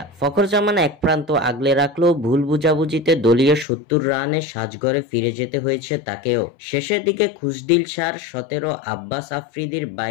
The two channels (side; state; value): right; drops out; at 3.7 s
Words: ফখর জামান এক প্রান্ত আগলে রাখলেও ভুল বুঝাবুঝিতে দলীয় 70 রানে সাজঘরে ফিরে যেতে হয়েছে তাকেও। শেষের দিকে খুশদিল শাহর 17, আব্বাস আফ্রিদির